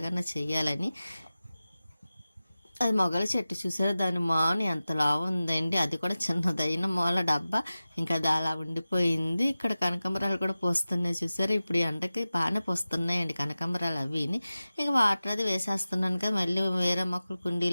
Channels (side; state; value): both; inverted; correlation -0.96